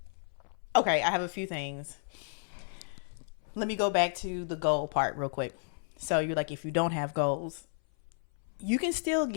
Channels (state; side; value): silent; right; 56 dB below the other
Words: okay, I have a few things. Let me go back to the goal part real quick. So you're like, if you don't have goals, you can still